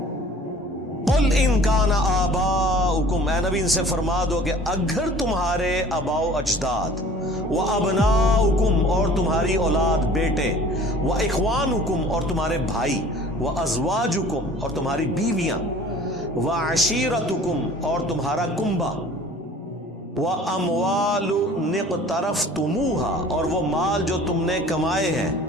قل ان کان آباؤکم، اے نبی ان سے فرما دو کہ اگر تمہارے آباء و اجداد، و ابناؤکم اور تمہاری اولاد بیٹے، و اخوانکم اور تمہارے بھائی، و ازواجکم اور تمہاری بیویاں، و عشیرتکم اور تمہارا کنبہ، و اموال اقترفتموہا اور وہ مال جو تم نے کمائے ہیں،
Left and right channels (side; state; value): both; normal; correlation 0.48